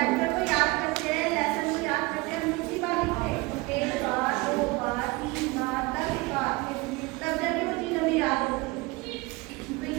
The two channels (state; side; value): quieter; left; 23.7 dB